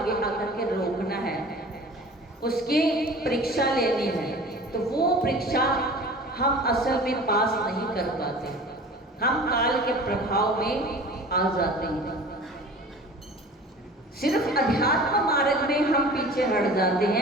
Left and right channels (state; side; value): normal; both; correlation 0.42